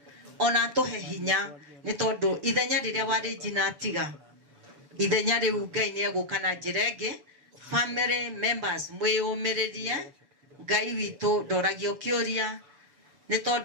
ona atũhe hinya nĩ tondũ ithenya rĩrĩa warĩ njina atiga ithenya rĩu Ngai nĩ egũka na njĩra ĩngĩ. Family members mwĩyũmĩrĩrie Ngai witũ ndoragio kĩũria nĩ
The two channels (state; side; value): late; left; 6.9 ms